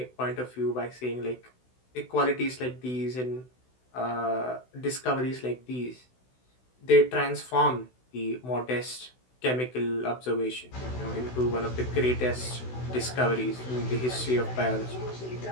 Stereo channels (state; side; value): late; right; 16 ms